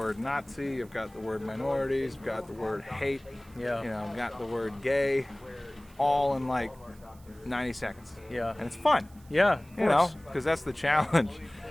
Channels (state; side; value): noise; right; hiss, 27 dB below the sound